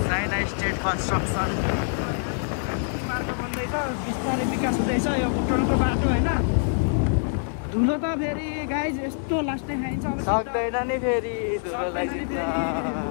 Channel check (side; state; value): right; silent; digital silence